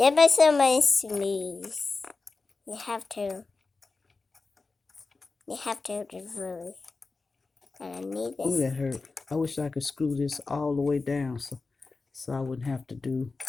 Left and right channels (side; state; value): right; quieter; 4.0 dB